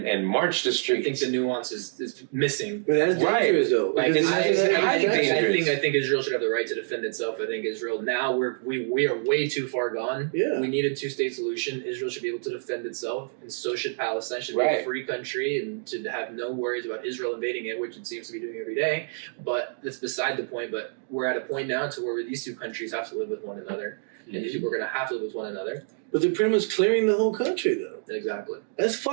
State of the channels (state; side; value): silent; left; digital silence